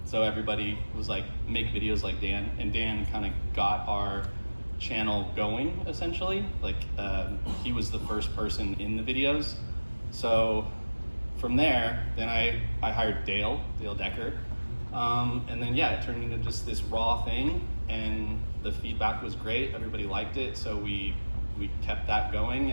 so everybody was like, make videos like Dan, and Dan kind of got our channel going essentially. Like he was the first person in the videos. So from there, then I hired Dale Decker. And then yeah, it turned into just this raw thing, and the feedback was great. Everybody liked it, so we kept that going,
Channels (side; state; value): both; inverted; correlation -1.00